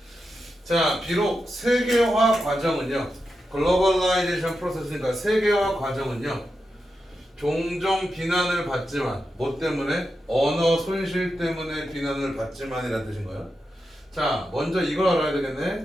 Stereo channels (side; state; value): both; normal; correlation 0.88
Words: 자, 비록 세계화 과정은요, 글로벌라이제이션 프로세스니까 세계화 과정은요, 종종 비난을 받지만, 뭐 때문에? 언어 손실 때문에 비난을 받지만이라는 뜻인 거야. 자, 먼저 이걸 알아야